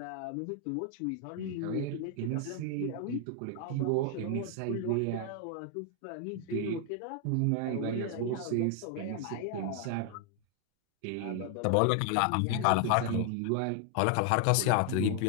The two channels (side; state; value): both; different; correlation 0.00